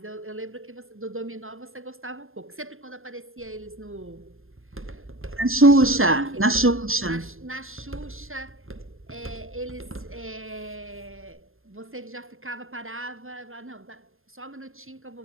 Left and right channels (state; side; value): late; left; 0.60 ms